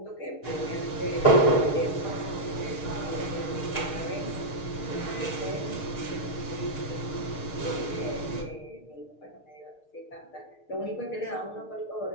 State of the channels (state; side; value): late; right; 6.5 ms